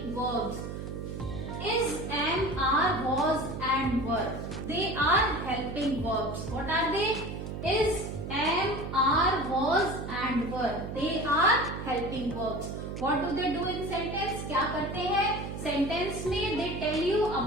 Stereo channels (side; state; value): right; noise; hum, 7 dB below the sound